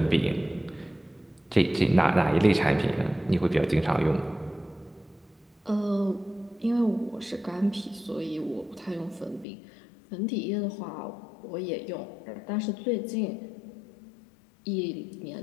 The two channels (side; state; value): right; drops out; at 9.5 s